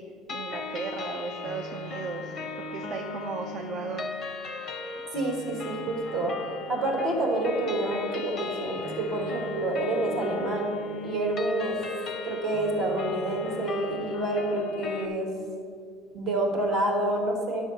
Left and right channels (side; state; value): both; normal; correlation 0.43